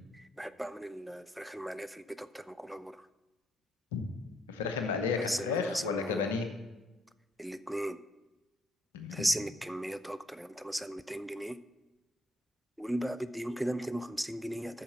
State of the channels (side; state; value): both; normal; correlation 0.72